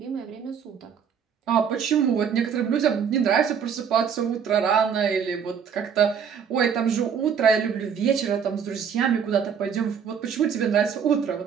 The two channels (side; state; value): left; quieter; 7.3 dB